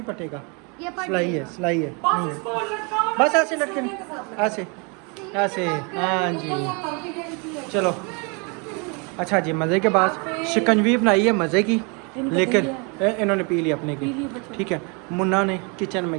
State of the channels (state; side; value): quieter; left; 33.1 dB